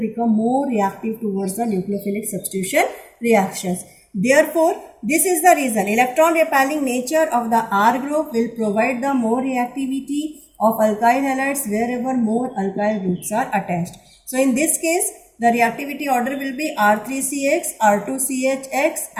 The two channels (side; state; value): both; identical; correlation 1.00